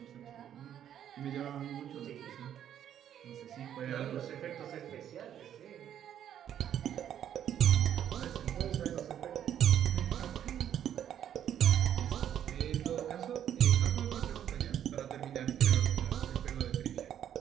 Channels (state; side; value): quieter; left; 10.1 dB